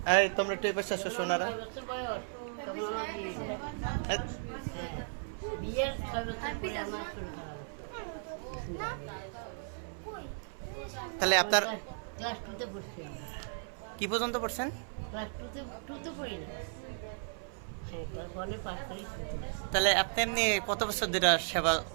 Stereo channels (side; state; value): left; silent; 54 dB below the other